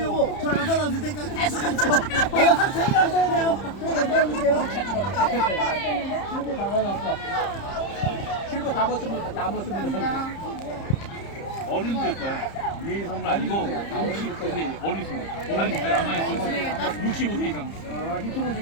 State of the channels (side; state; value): right; late; 30 ms